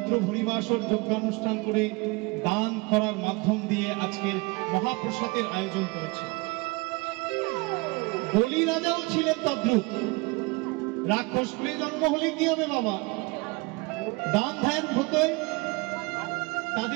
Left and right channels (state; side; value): quieter; left; 26.4 dB